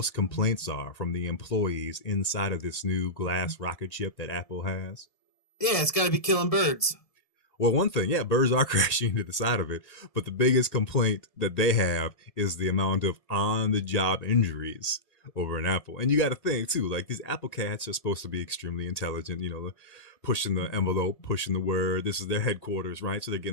complaints are from the employees inside of this new glass rocket ship that Apple has? Yeah, it's got to be killing birds. Well, one thing, yeah, birds are crashing into the side of it, but the biggest complaint that they have is the amount of on the job injuries over an Apple. And you got to think, too, like these Apple cats are supposed to be extremely intelligent, pushing the envelope, pushing the word. This is their headquarters, right? So they're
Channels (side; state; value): right; late; 1.6 ms